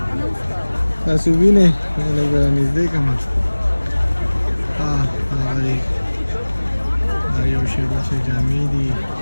तासुबी ने लगा नजदे कमा हाँ आयो शेमा शे जामी दी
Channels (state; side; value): inverted; both; correlation -1.00